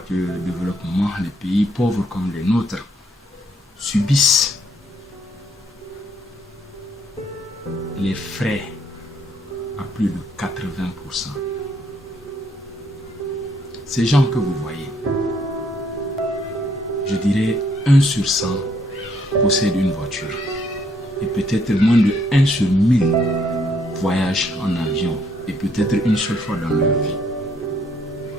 de développement, les pays pauvres comme les nôtres, subissent les frais à plus de 80%. Ces gens que vous voyez, je dirais 1 sur 100 possèdent une voiture. Et peut-être moins de 1 sur 1000 voyagent en avion. Et peut-être une seule fois dans leur vie.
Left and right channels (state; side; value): normal; both; correlation 0.69